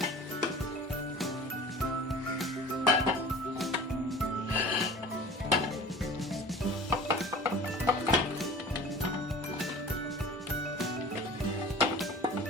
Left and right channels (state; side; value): normal; both; correlation 0.41